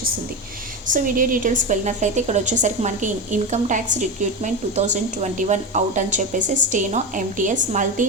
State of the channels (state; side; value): normal; both; correlation 0.19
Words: సో వీడియో డీటెయిల్స్కి వెళ్ళినట్లయితే ఇక్కడ వచ్చేసరికి మనకి ఇన్కమ్ ట్యాక్స్ రిక్రూట్మెంట్ 2021 అవుట్ అని చెప్పేసి steno MTS multi